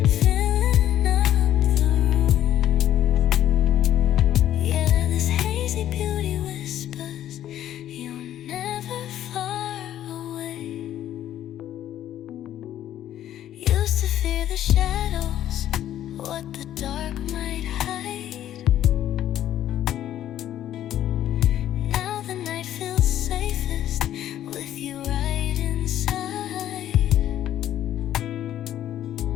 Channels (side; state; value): right; quieter; 11.8 dB